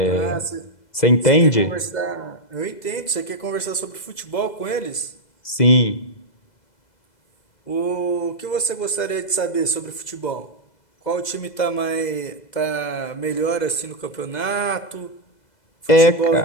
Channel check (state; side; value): late; right; 2.0 ms